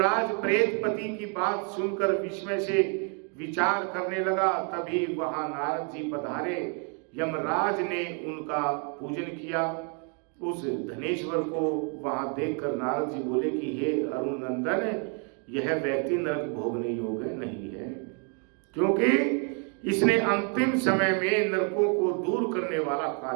प्रेतपति की बात सुनकर विस्मय से विचार करने लगा। तभी वहां नारद जी पधारे। यमराज ने उनका पूजन किया। उस धनेश्वर को वहां देखकर नारद जी बोले कि हे अरुण नंदन, यह व्यक्ति नरक भोगने योग्य नहीं है, क्योंकि इसने अंतिम समय में नरकों को दूर करने वाला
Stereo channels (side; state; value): left; quieter; 39.2 dB